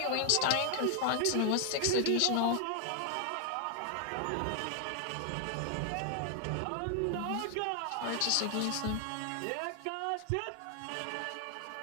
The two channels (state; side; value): different; both; correlation 0.00